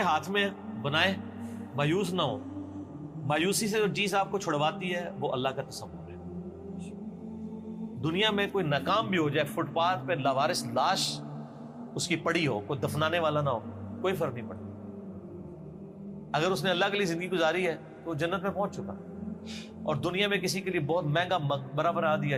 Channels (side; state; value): both; identical; correlation 1.00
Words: ہاتھ میں بنائے، مایوس نہ ہو. مایوسی سے جو چیز آپ کو چھڑواتی ہے وہ اللہ کا تصور ہے. دنیا میں کوئی ناکام بھی ہو جائے، فٹ پاتھ پہ لاوارث لاش اس کی پڑی ہو، کوئی دفنانے والا نہ ہو، کوئی فرق نہیں پڑتا. اگر اس نے اللہ کے لیے زندگی گزاری ہے تو وہ جنت میں پہنچ چکا. اور دنیا میں کسی کے لیے بہت مہنگا مقبرہ بنا دیا